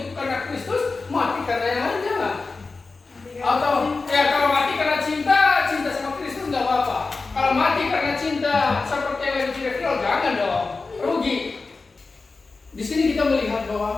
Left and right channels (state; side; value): quieter; right; 4.0 dB